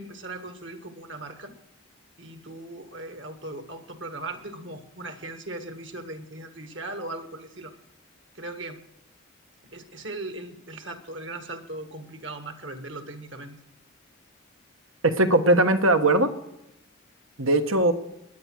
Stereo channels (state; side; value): normal; both; correlation -0.09